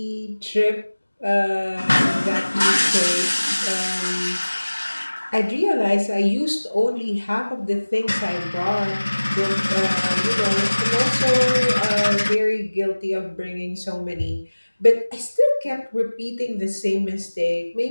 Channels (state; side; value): inverted; both; correlation -1.00